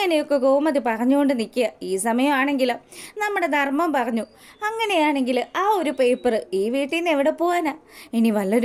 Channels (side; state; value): both; identical; correlation 1.00